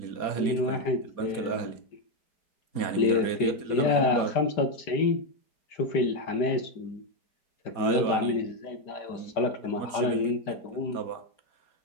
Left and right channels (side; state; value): right; late; 4.2 ms